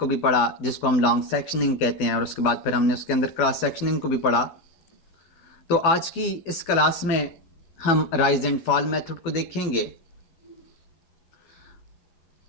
भी पढ़ा जिसको हम लॉन्ग सेक्शनिंग कहते हैं और उसके बाद फिर हमने उसके अंदर क्रॉस सेक्शनिंग को भी पढ़ा। तो आज की इस क्लास में हम राइज एंड फॉल मेथड को देखेंगे।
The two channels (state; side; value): late; right; 12 ms